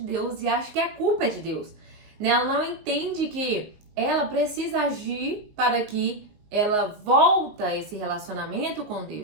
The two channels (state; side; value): late; left; 19 ms